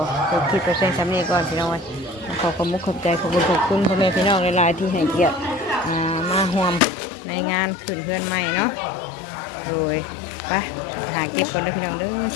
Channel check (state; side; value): drops out; right; at 6.8 s